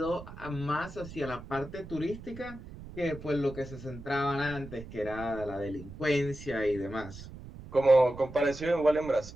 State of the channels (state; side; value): noise; right; rumble, 14 dB below the sound